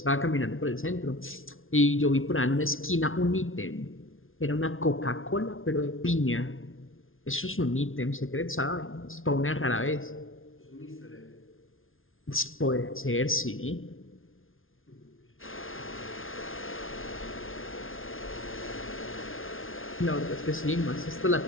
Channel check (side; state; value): right; late; 0.59 ms